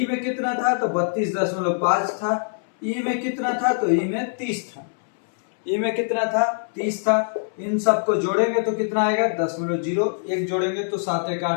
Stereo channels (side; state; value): right; silent; 63 dB below the other